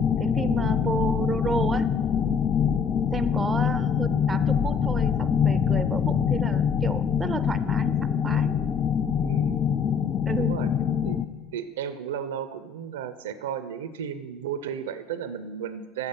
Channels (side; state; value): right; quieter; 5.1 dB